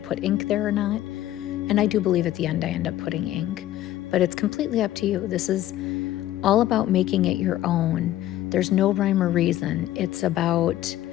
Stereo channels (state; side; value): quieter; right; 13.8 dB